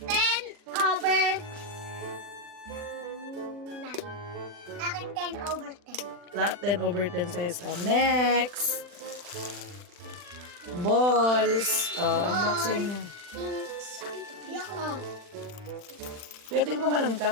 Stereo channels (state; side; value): late; left; 40 ms